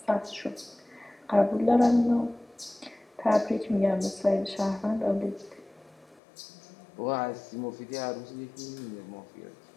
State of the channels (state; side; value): drops out; right; at 6.2 s